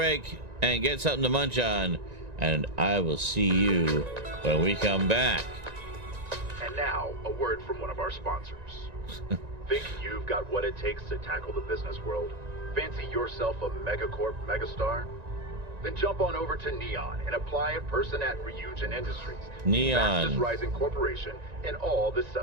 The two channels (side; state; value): left; late; 1.9 ms